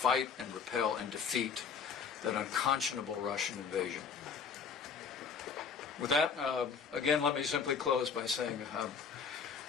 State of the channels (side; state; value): right; quieter; 6.1 dB